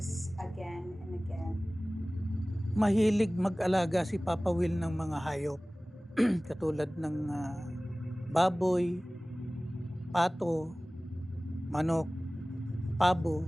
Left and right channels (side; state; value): both; normal; correlation 0.98